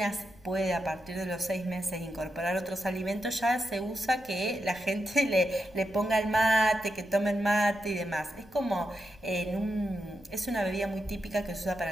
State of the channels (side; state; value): left; noise; rumble, 25 dB below the sound